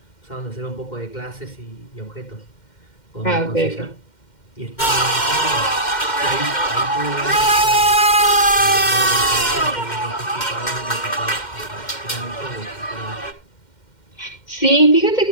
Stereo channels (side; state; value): right; late; 2.1 ms